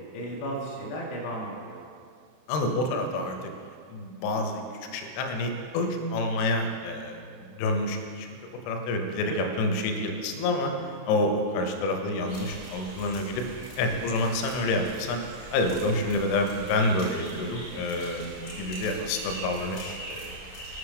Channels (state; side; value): late; right; 32 ms